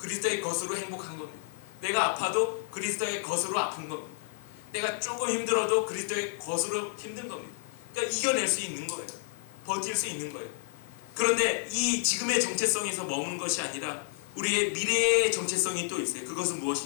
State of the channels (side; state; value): right; silent; digital silence